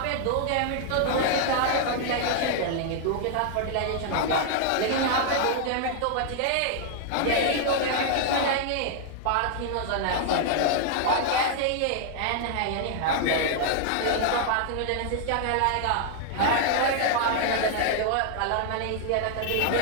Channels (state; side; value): different; both; correlation 0.00